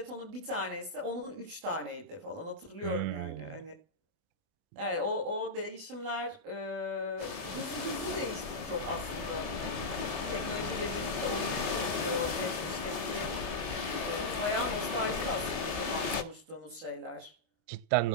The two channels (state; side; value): late; left; 24 ms